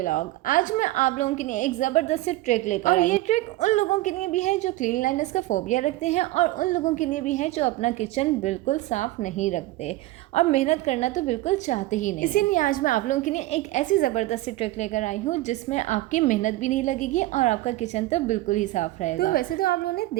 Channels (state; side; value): quieter; left; 17.5 dB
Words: आज मैं आप लोगों के लिए एक ज़बरदस्त सी ट्रिक लेकर आई। ये ट्रिक उन लोगों के लिए भी है जो क्लीनलीनेस का फोबिया रखते हैं और उन लोगों के लिए भी है जो अपना किचन बिल्कुल साफ नहीं रखते और मेहनत करना तो बिल्कुल चाहते ही नहीं। इसीलिए आज मैं आप लोगों के लिए एक ऐसी ज़बरदस्त सी ट्रिक लेकर आई हूँ जिसमें आपकी मेहनत भी नहीं लगेगी और आपका किचन तो बिल्कुल ही साफ रहेगा। तो वैसे तो आप लोगों ने